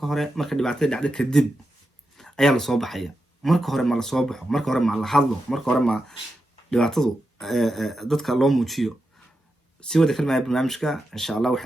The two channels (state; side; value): normal; both; correlation 0.88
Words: hore marka dhibaatada dhacdo kadib ayaa la soo baxaya marka hore ma la soo baxo marka hore ma la hadlo marka hore ma dhibaatadu dadka loo muujiyo si wada kalmaya barnaamijka insha allah